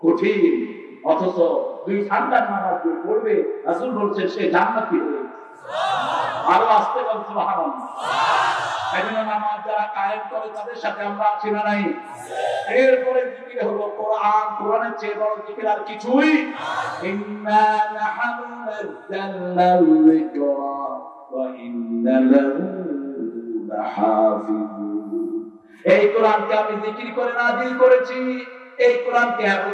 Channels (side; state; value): both; identical; correlation 1.00